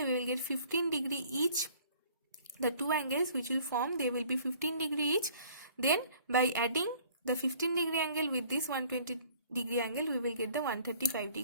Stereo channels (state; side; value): inverted; both; correlation -0.54